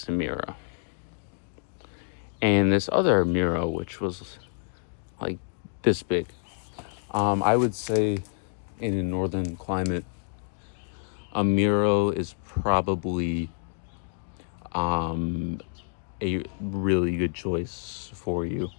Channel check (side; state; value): right; silent; digital silence